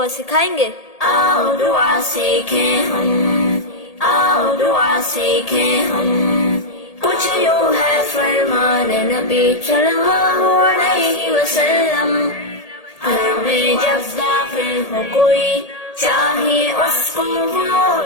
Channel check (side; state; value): right; late; 1.8 ms